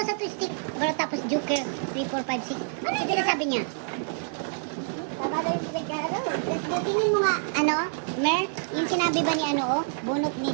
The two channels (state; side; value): silent; left; digital silence